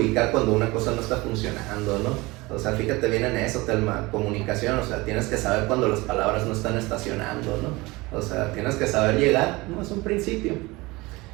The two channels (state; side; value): quieter; left; 22.4 dB